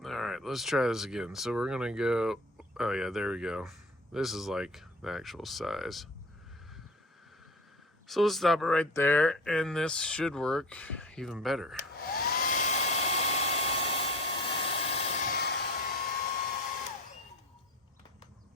All right, let's try this again. So we're gonna go, oh yeah, there we go. This is like the actual size. So let's stop it right there, and this should work even better.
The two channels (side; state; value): both; normal; correlation 0.38